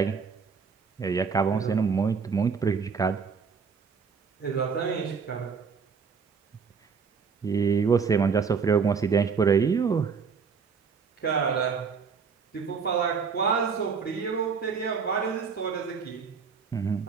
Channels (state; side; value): quieter; left; 5.7 dB